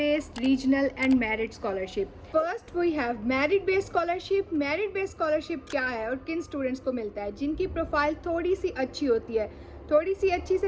regional and merit scholarship. First we have merit based scholarship. merit based scholarship क्या है और किन students को मिलता है? जिनकी profile थोड़ी सी अच्छी होती है। थोड़ी सी अच्छी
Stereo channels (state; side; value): identical; both; correlation 1.00